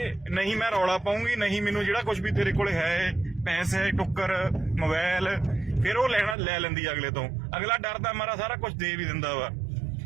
ਨਹੀਂ ਮੈਂ ਰੌਲਾ ਪਾਉਂਗੀ, ਨਹੀਂ ਮੈਨੂੰ ਜਿਹੜਾ ਕੁਝ ਵੀ ਤੇਰੇ ਕੋਲ ਹੈ, ਪੈਸੇ, ਟੁੱਕਰ, ਮੋਬਾਈਲ, ਫਿਰ ਉਹ ਲੈ ਲੈਂਦੀ ਅਗਲੇ ਤੋਂ। ਅਗਲਾ ਡਰਦਾ ਮਾਰਾ ਸਾਰਾ ਕੁਝ ਦੇ ਵੀ ਦਿੰਦਾ ਵਾ।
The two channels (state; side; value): drops out; left; at 6.4 s